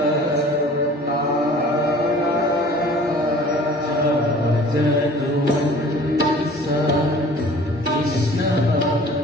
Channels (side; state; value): both; normal; correlation 0.47